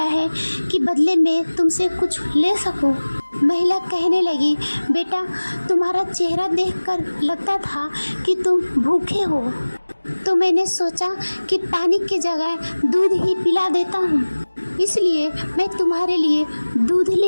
है कि बदले में तुमसे कुछ ले सकूं। महिला कहने लगी, बेटा तुम्हारा चेहरा देखकर लगता था कि तुम भूखे हो, तो मैंने सोचा कि पानी की जगह दूध ही पिला देता हूँ, इसलिए मैं तुम्हारे लिए दूध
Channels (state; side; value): inverted; both; correlation -1.00